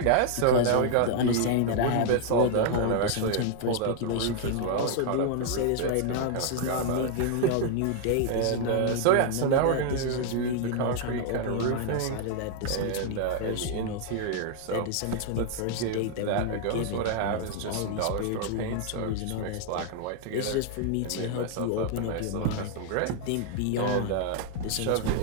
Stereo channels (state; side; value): different; both; correlation 0.00